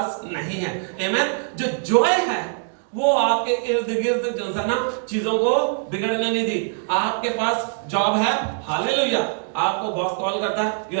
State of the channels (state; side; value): silent; left; digital silence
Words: नहीं है। आमीन। जो जॉय है वो आपके इर्द गिर्द जो है ना चीजों को बिगड़ने नहीं दी। आपके पास जॉब है, हालेलुया। आपको बॉस कॉल करता है, you